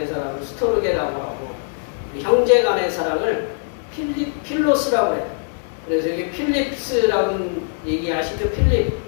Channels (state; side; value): silent; right; 65 dB below the other